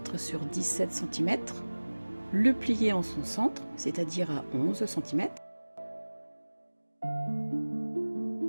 sur 17 cm, le plier en son centre, c'est-à-dire à 11 cm.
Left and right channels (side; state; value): both; inverted; correlation -1.00